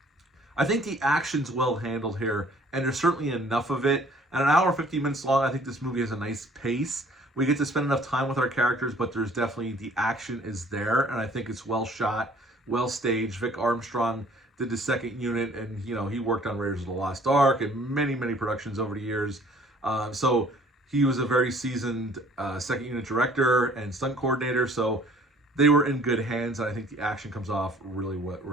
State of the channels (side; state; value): both; normal; correlation 0.55